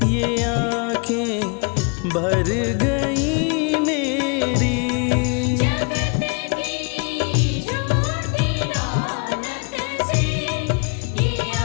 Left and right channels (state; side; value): quieter; right; 33.6 dB